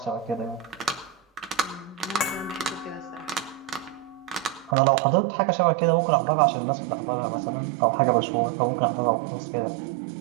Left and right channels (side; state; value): left; drops out; at 4.8 s